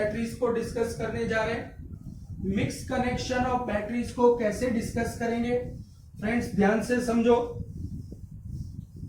को डिस्कस करने जा रहे हैं। मिक्स कनेक्शन ऑफ बैटरीज को कैसे डिस्कस करेंगे फ्रेंड्स, ध्यान से समझो।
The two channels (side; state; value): both; identical; correlation 1.00